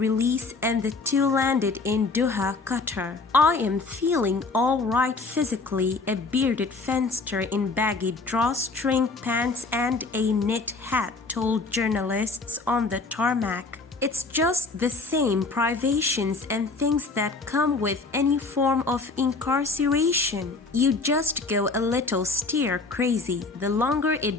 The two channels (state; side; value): quieter; right; 3.8 dB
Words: and the two landed in Doha, Qatar. "I am feeling all right physically," a bearded Fenster in baggy drawstring pants and a knit hat told journalists on the tarmac. "It's just the same privations and things that come with any form of incarceration. You just go a little stir crazy. The longer